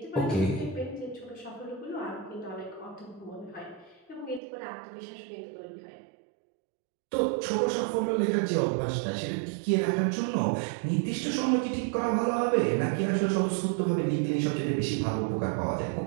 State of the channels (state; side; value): drops out; left; at 4.4 s